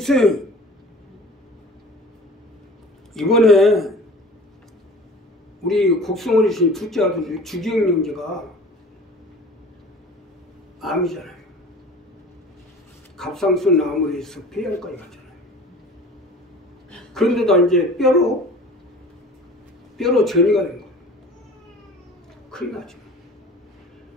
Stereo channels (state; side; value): normal; both; correlation 0.42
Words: 이번에 우리 곡성어르신 둘째 아들 주기영 형제가 암이잖아요. 갑상선 암으로 해서 폐암까지 갔잖아요. 그런데도 이제 뼈로 전이가 된 거예요. 큰일 나죠.